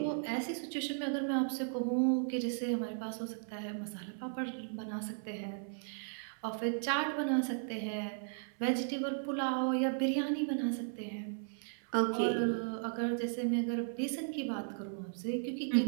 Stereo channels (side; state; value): left; silent; 54 dB below the other